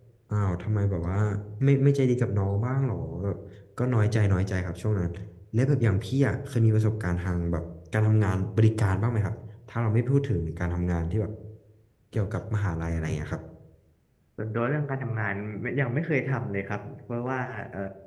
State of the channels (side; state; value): both; identical; correlation 1.00